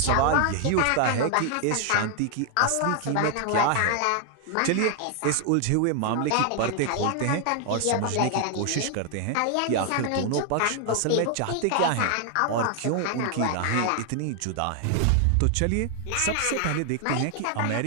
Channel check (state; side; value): different; both; correlation 0.00